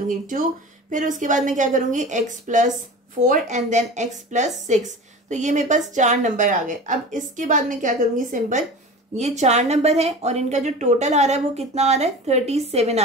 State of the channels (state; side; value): normal; both; correlation 0.34